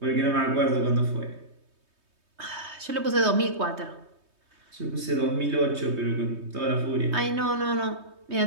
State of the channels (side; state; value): left; late; 3.2 ms